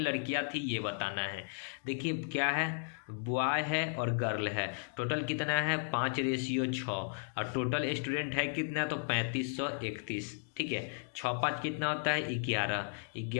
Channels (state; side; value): silent; right; digital silence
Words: थी ये बताना है। देखिए क्या है, बॉय है और गर्ल है, टोटल कितना है 5:6 और टोटल स्टूडेंट है कितना, तो 3531, ठीक है। 6 5 कितना होता है 11,